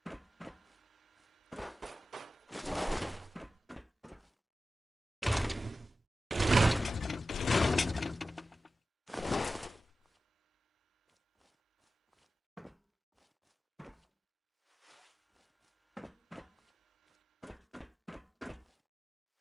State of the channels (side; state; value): both; normal; correlation 0.94